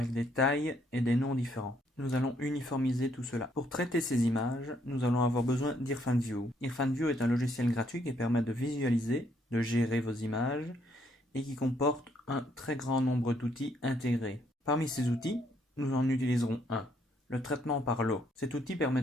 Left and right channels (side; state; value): both; normal; correlation 0.70